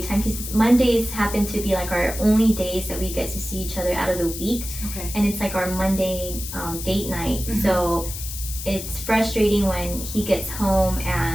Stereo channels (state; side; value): noise; left; hiss, 8 dB below the sound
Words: time, because Mondays happen to be like our only days that we get to see each other out of the week. And it's like our Monday date night. So it's frustrating when he gets home